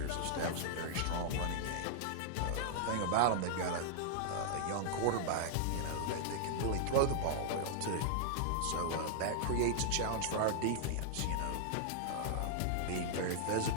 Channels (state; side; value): different; both; correlation -0.01